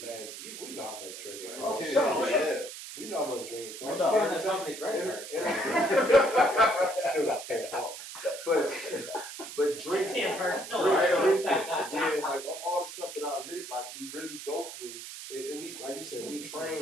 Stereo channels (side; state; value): right; noise; hiss, 11 dB below the sound